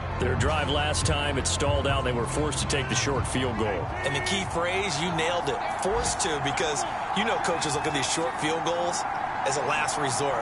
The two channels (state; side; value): identical; both; correlation 1.00